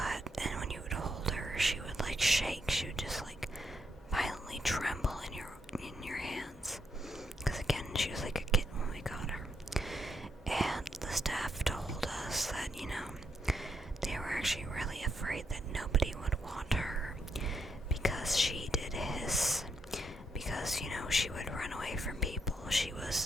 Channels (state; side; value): normal; both; correlation 0.79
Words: And when you would hold her, she would like shake. She would just like violently tremble in your hands. Because again, she was like a kitten when we got her. And the staff told us that, they were actually really afraid that nobody would want her because she did hiss. Because, she would run away from people. She